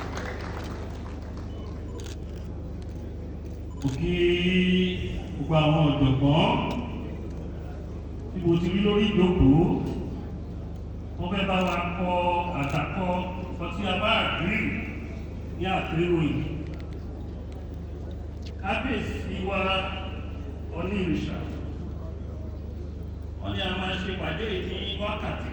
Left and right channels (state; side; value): identical; both; correlation 1.00